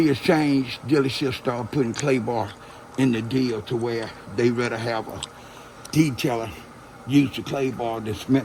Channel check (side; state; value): both; identical; correlation 1.00